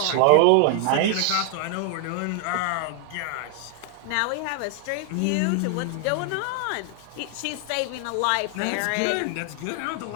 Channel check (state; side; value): different; both; correlation 0.00